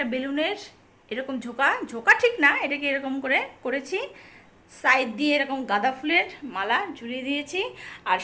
বেলুনের এরকম ঝোঁকা ঝোঁকা ঠিক না, এটাকে এরকম করে করেছি। সাইড দিয়ে এরকম গাঁদা ফুলের মালা ঝুলিয়ে দিয়েছি। আর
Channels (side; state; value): both; identical; correlation 1.00